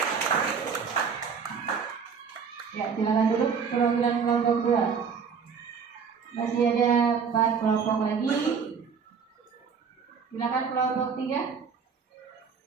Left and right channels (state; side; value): quieter; left; 6.2 dB